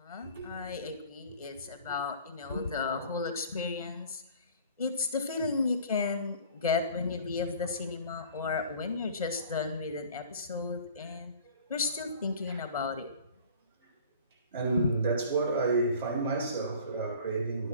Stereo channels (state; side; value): inverted; both; correlation -0.46